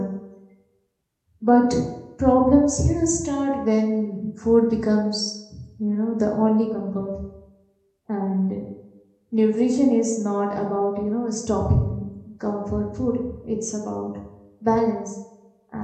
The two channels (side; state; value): both; identical; correlation 1.00